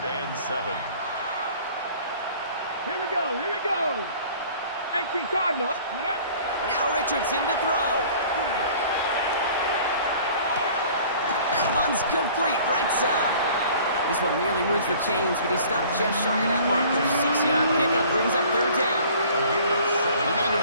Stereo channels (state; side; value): inverted; both; correlation -0.50